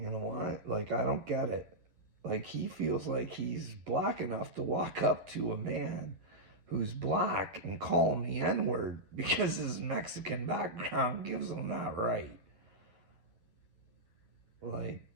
know what? Like, I don't get it. Like, he feels like he's black enough to walk up to a man who's black and call him the N word because his Mexican background gives him that right. Like,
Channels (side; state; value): left; late; 11 ms